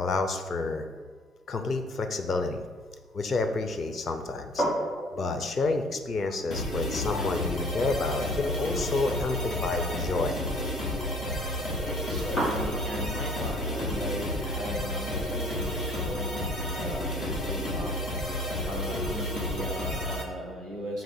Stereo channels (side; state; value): both; normal; correlation 0.52